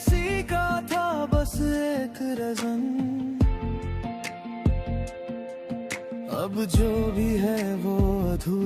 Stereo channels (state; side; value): identical; both; correlation 1.00